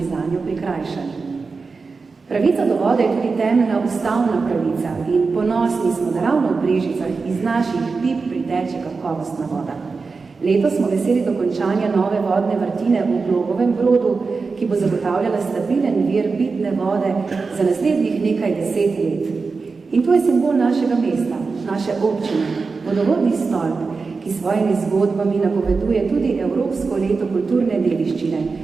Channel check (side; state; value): left; quieter; 4.5 dB